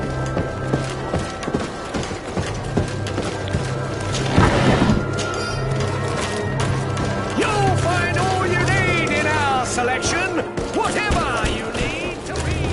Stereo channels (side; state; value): both; identical; correlation 1.00